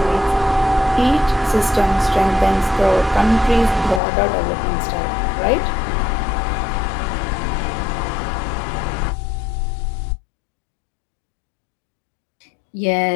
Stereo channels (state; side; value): drops out; right; at 4.0 s